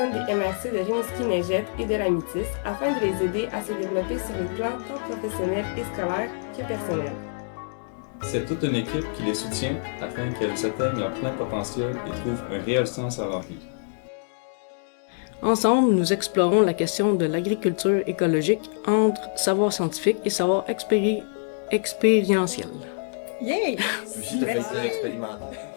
des MRC de Rimouski-Neigette et de la Métis afin de les aider à se développer sur les plans tant professionnels et scolaires que personnels. C'est toute une équipe qui les soutient afin qu'elles atteignent leur plein potentiel et trouvent un réel sens à leur vie. Ensemble, nous explorons la question de l'agriculture écologique entre savoir scientifique et savoir expérientiel. Yay! Aussi, tu as fait ça expérimentaire.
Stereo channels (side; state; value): right; silent; digital silence